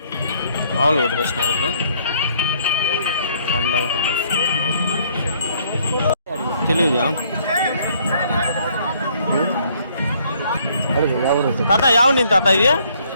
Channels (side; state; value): both; inverted; correlation -0.65